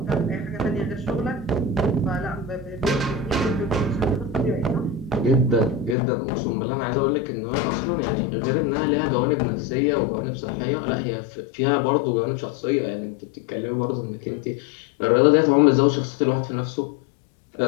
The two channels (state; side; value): drops out; right; at 6.0 s